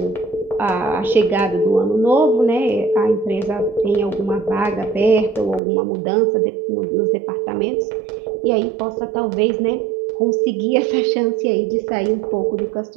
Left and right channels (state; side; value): drops out; left; at 5.6 s